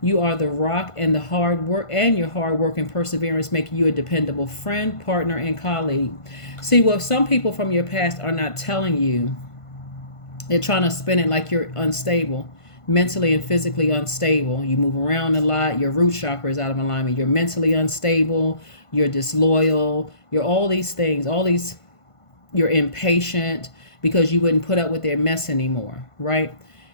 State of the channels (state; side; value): late; right; 1.5 ms